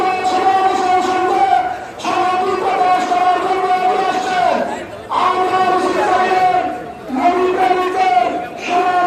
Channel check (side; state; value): both; identical; correlation 1.00